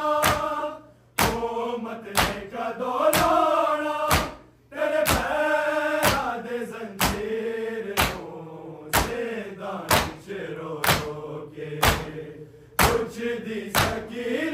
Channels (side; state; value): both; identical; correlation 1.00